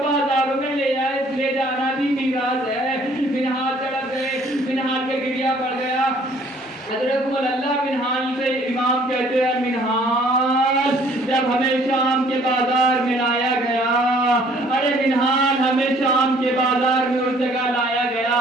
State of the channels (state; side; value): normal; both; correlation 0.58